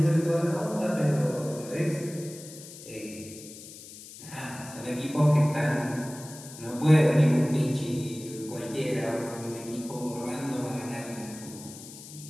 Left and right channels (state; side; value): noise; left; hiss, 15 dB below the sound